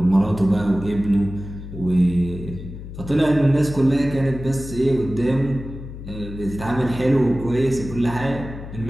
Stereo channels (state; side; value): noise; left; hum, 11 dB below the sound